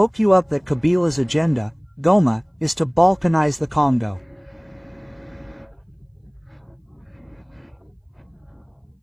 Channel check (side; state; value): both; identical; correlation 1.00